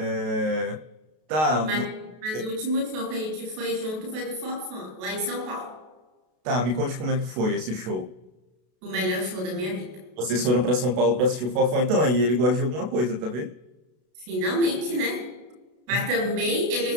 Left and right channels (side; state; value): left; late; 32 ms